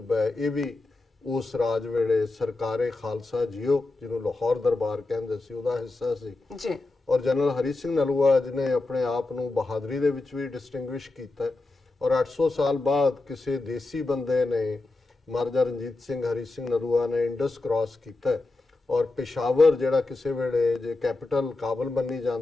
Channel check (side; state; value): right; quieter; 3.2 dB